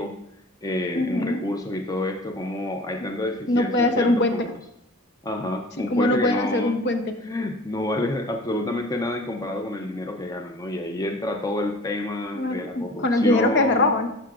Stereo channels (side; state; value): both; normal; correlation 0.42